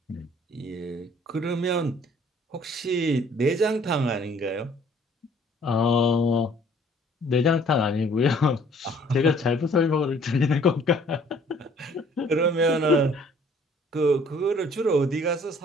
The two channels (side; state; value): both; normal; correlation 0.58